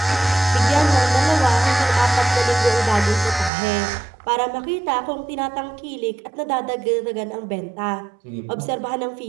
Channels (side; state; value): left; drops out; at 3.5 s